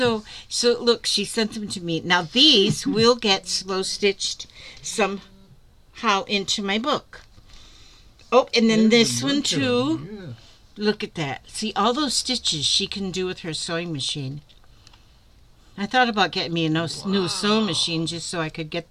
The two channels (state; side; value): identical; both; correlation 1.00